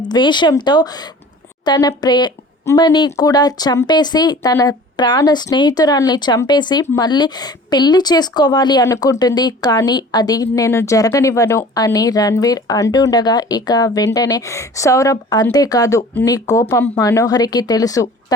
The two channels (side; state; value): both; normal; correlation 0.44